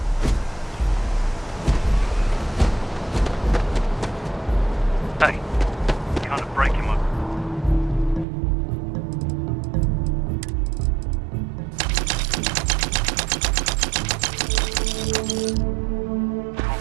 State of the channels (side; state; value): left; drops out; at 8.2 s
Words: Hey, kind of break him up.